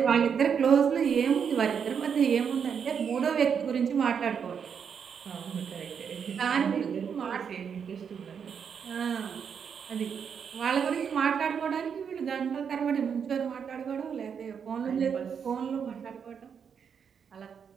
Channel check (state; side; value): quieter; left; 7.1 dB